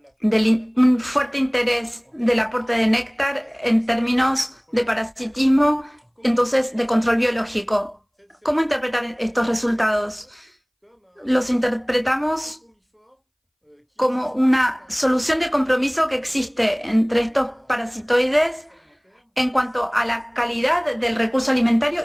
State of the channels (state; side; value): identical; both; correlation 1.00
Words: de un fuerte interés del aporte de néctar en términos de parasitismo, entonces de control biológico. ¿Cómo interpretar estos resultados? Los interpretamos como una solución de compromiso que existe entre estos parasitoides en cuanto a la calidad del recurso alimentario